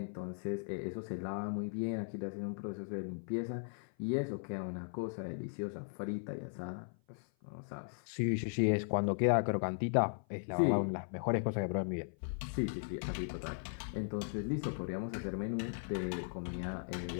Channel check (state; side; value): silent; right; 53 dB below the other